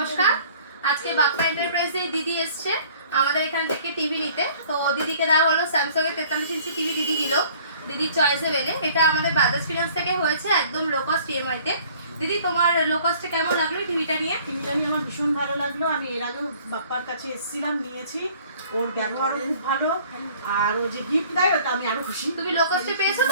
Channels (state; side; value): inverted; both; correlation -0.53